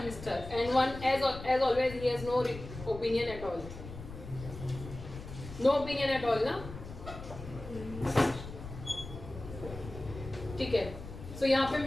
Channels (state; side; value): noise; left; rumble, 12 dB below the sound